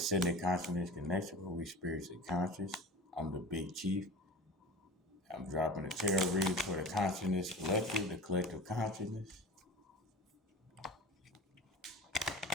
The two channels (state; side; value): normal; both; correlation 0.35